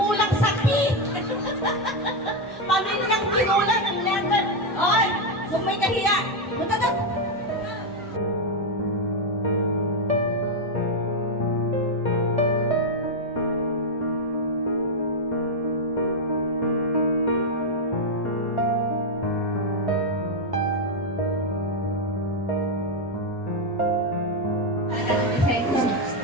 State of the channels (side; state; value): both; normal; correlation 0.04